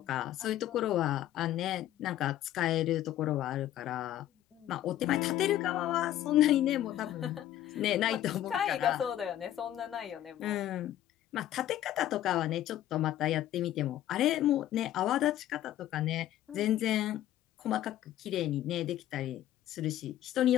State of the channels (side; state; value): right; quieter; 12.7 dB